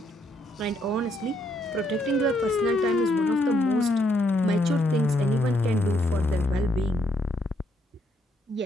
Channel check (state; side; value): normal; both; correlation 0.74